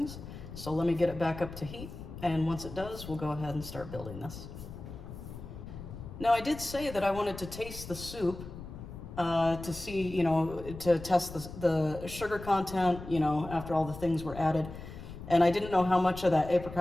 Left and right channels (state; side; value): noise; left; rumble, 12 dB below the sound